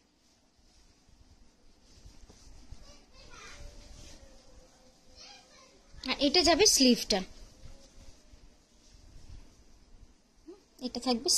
আর এটা যাবে স্লিভটা, এটা থাকবে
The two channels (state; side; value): identical; both; correlation 1.00